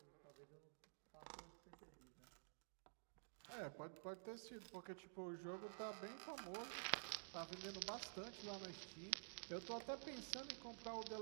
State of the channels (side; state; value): left; silent; digital silence